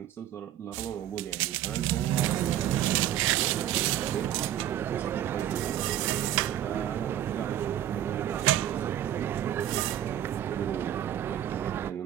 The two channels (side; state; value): left; quieter; 11.6 dB